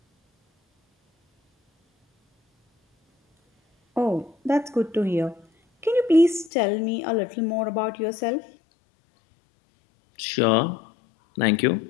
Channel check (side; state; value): right; drops out; at 6.5 s